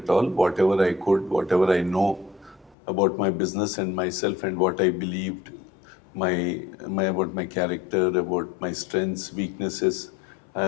all. Whatever I could, whatever I know about my business and myself and what I believed, about my character, about my strengths, weaknesses, I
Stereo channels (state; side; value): drops out; right; at 2.8 s